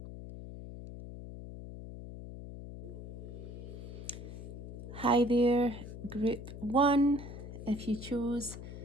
Hi there, group 1. If you chose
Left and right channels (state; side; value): noise; left; hum, 10 dB below the sound